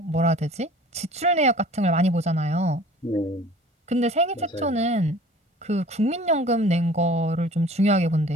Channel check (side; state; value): both; normal; correlation 0.47